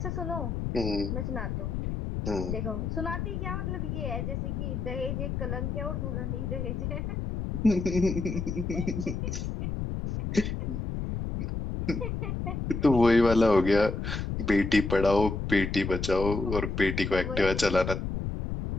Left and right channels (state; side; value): noise; left; rumble, 3 dB below the sound